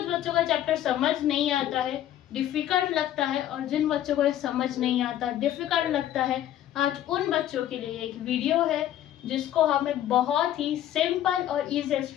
बच्चों का चैप्टर समझ नहीं आता है, डिफिकल्ट लगता है, और जिन बच्चों को ये समझ नहीं आता, डिफिकल्ट लगता है, आज उन बच्चों के लिए एक वीडियो है जिसको हमें बहुत ही सिंपल और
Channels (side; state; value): right; quieter; 12.0 dB